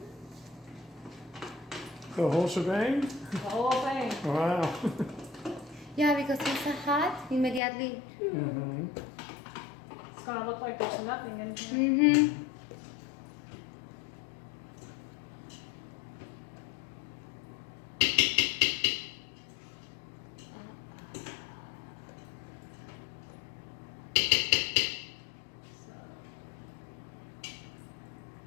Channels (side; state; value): right; drops out; at 7.6 s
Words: The whole shebang? The whole thing. Wow. Yeah, because it's hot immediately. Mm-hmm. It's going to look like there's nothing in here. Mm-hmm.